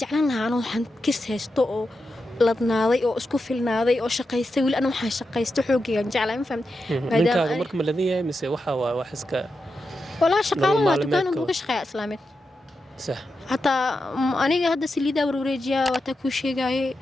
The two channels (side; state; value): both; normal; correlation 0.88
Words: jeclaan lahaa anoo waxaan kis haysto oo ladnaaday oo isku filnaaday oo shaqaystay wili ana waxaan shaqaysto xoogayaan jeclaa ma fahamtay ninkaaga marka ma ladan yahay mise waxa waa wax iska walaa shaqaalaha dukaan uga shaqeeya islaameed صح حتى أنا هذا سليدا وروريجيا وتكوشي جاي